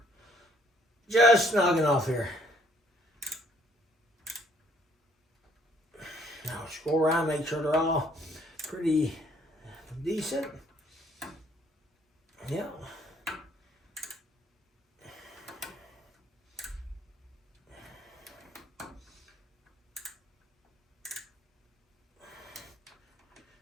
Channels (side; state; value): both; normal; correlation 0.63